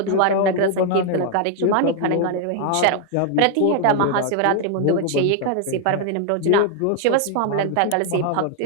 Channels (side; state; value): both; different; correlation 0.00